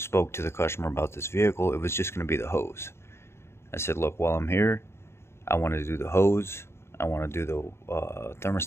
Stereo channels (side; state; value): right; late; 0.12 ms